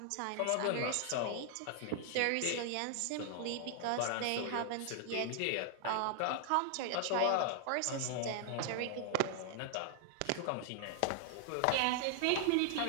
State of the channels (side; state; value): both; different; correlation 0.00